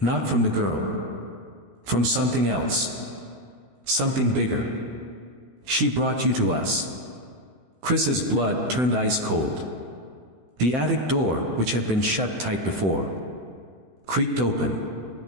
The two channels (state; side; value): late; left; 16 ms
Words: from the girl. From something else. Something bigger. "She brought you to us." Chris's blood turned ice cold. The attic door, which had been shut tight before, creaked